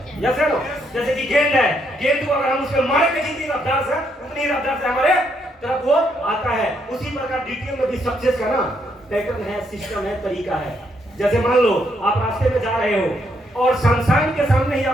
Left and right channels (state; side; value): normal; both; correlation 0.75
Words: यस है नो? जैसे कि गेंद है, गेंद को अगर हम उसके मारे के जितनी रफ्तार से, उतनी रफ्तार से हमारे तरफ वो आता है। उसी प्रकार डीटीएम में भी सक्सेस का ना पैटर्न है, सिस्टम है, तरीका है। जैसे मान लो आप रास्ते में जा रहे हो और शमशान के सामने ही